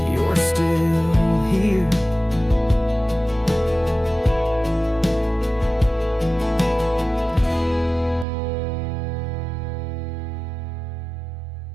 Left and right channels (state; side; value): drops out; left; at 8.2 s